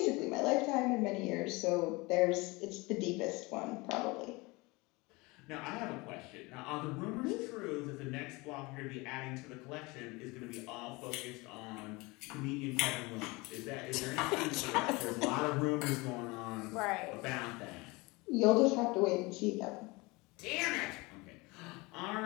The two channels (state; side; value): quieter; right; 24.4 dB